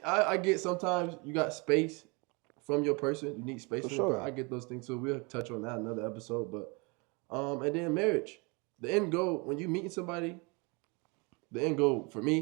I get sometimes you got space from your person. You need space For from your sure. person. I get those things too. We'll touch on that another episode. But and then marriage. The end goal when you meeting somebody, the end goal for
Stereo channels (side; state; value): left; quieter; 29.7 dB